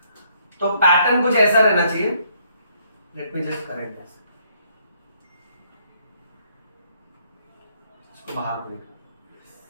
तो पैटर्न कुछ ऐसा रहना चाहिए। Let me just correct this, इसको बाहर देखो।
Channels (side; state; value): both; inverted; correlation -0.69